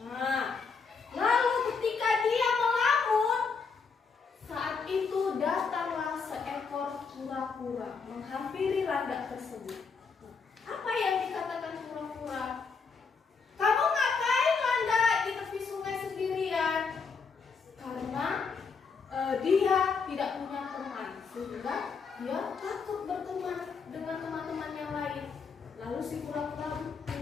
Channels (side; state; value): right; quieter; 5.2 dB